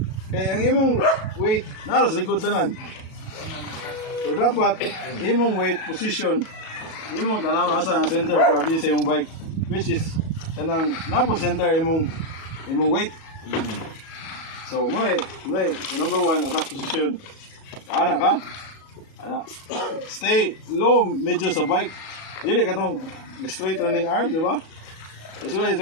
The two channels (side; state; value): right; late; 37 ms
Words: Kaya ang imong weight, naras likod tanan. So dapat, imong weight position, imong tanaw asa ang center grabe sa imong bike. Which is, kanang napo center imong weight. So muna, number one, attack position. Ana ka? Ana. Stay low, medyo sa bike. Dili ka tong straight running arm, di ba? Usually